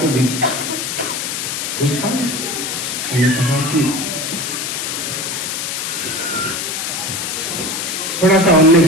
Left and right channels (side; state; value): left; noise; hiss, 3 dB below the sound